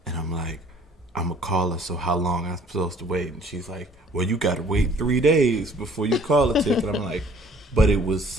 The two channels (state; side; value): normal; both; correlation 0.56